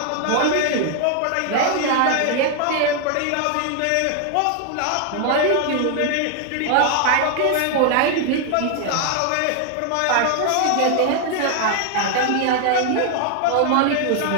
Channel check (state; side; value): different; both; correlation 0.00